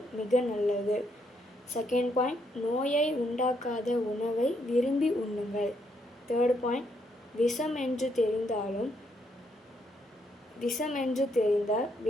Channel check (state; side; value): normal; both; correlation 0.74